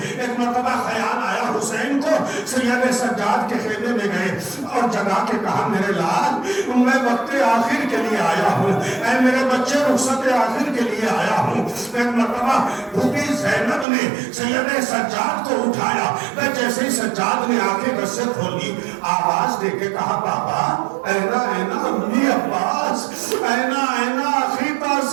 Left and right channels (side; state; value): left; drops out; at 13.9 s